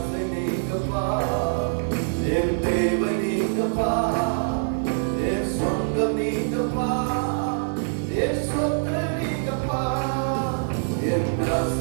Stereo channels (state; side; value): silent; left; digital silence